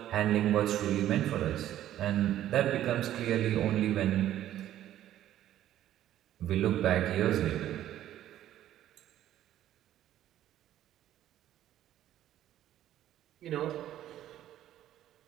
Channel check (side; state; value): left; quieter; 12.4 dB